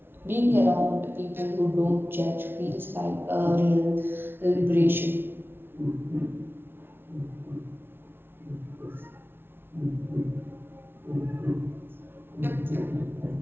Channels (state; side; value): late; left; 0.11 ms